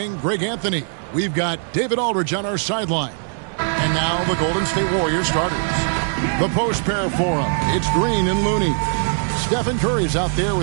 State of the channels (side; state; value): left; silent; digital silence